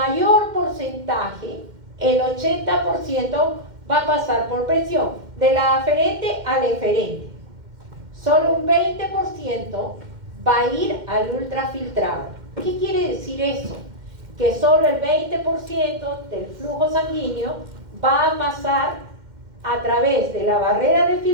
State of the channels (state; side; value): late; left; 2.1 ms